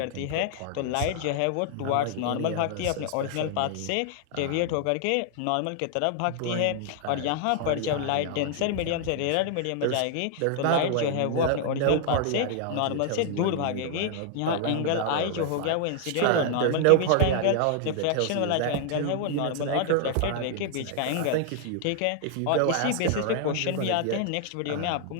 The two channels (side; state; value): both; different; correlation -0.01